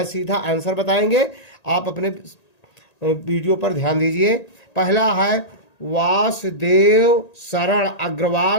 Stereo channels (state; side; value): late; right; 1.9 ms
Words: सीधा आंसर बताएंगे। आप अपने वीडियो पर ध्यान दीजिए। पहला है वासुदेव शरण